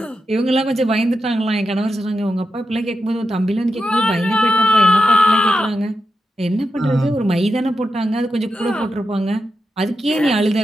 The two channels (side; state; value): both; normal; correlation 0.88